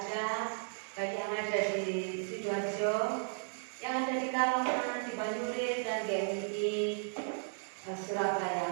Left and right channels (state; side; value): silent; left; digital silence